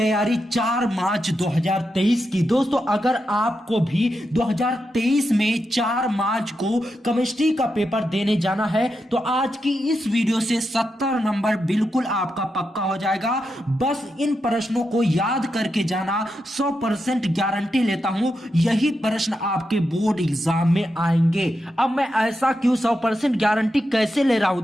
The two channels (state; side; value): normal; both; correlation 0.86